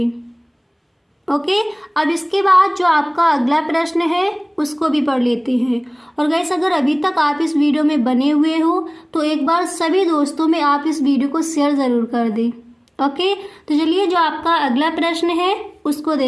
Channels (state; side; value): identical; both; correlation 1.00